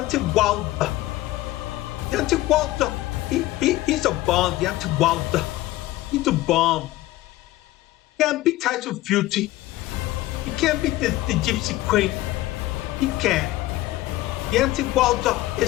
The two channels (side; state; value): right; quieter; 16.9 dB